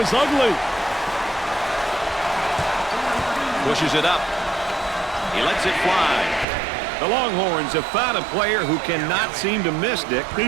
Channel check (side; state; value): left; drops out; at 6.5 s